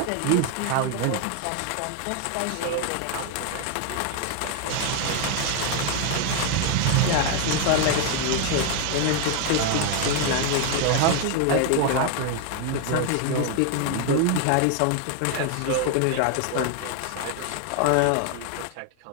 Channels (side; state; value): both; different; correlation 0.01